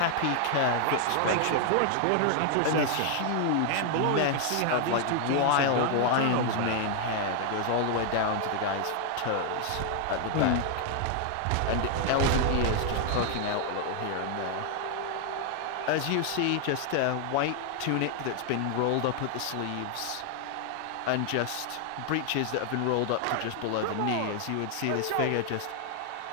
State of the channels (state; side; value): different; both; correlation 0.00